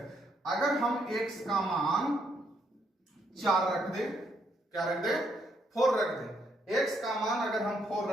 अगर हम x का मान 4 रख दें, क्या रख दें, 4 रख दें, x का मान अगर हम 4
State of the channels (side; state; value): both; normal; correlation 0.74